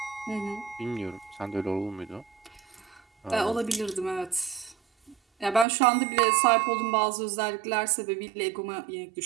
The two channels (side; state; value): left; drops out; at 5.7 s